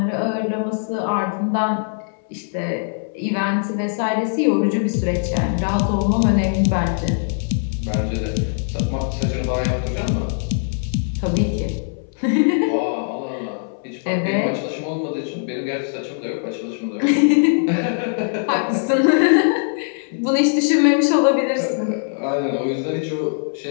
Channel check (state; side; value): silent; right; 62 dB below the other